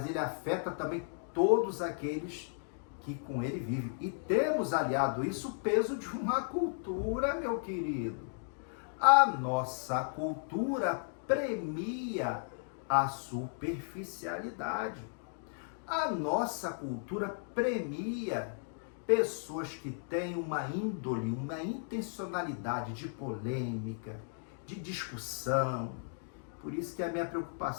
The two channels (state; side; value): silent; right; digital silence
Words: ele afeta também todos aqueles que com ele vivem. E temos aliado isso o peso de uma cultura, meu querido. A nossa cultura premia a superficialidade. A nossa cultura premia pessoas que têm uma índole, uma intencionalidade de polêmica, de discussão. Por isso que a minha